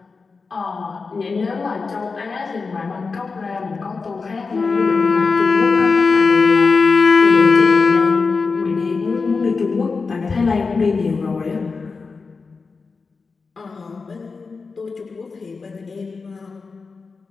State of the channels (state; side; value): quieter; right; 4.5 dB